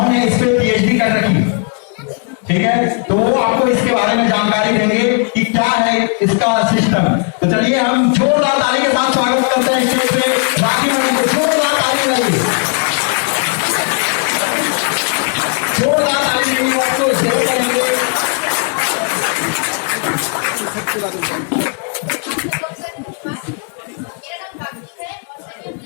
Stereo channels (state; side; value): quieter; right; 39.5 dB